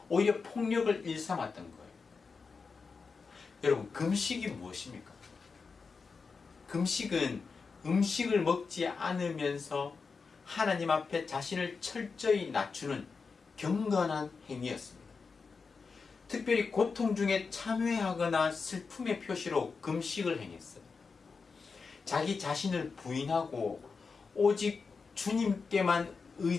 오히려 폭력을 일삼았던 거예요. 여러분, 금식이 무엇입니까? 금식은 음식을 먹지 않으면서 하나님 앞에 자신을 철저히 낮추는 경건한 행위였습니다. 특별히 고통 중에 참회하거나 슬픔의 표시로 금식을 행했어요. 자기 자신을 부인하고 오직 주님께만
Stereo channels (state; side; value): quieter; right; 4.9 dB